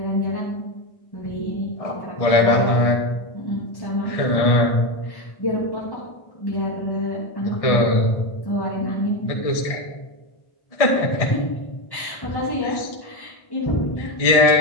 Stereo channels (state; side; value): late; right; 1.6 ms